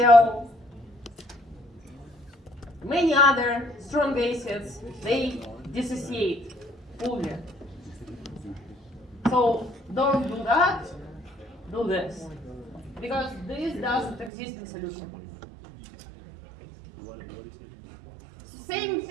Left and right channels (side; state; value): left; drops out; at 14.3 s